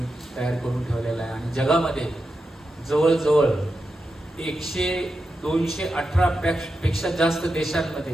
तयार करून ठेवलेला आहे. आणि जगामध्ये जवळजवळ 218 पेक्षा जास्त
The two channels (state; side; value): normal; both; correlation 0.89